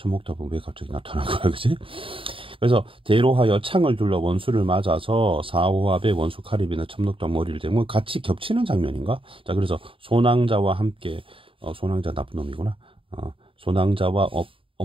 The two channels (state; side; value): late; left; 0.26 ms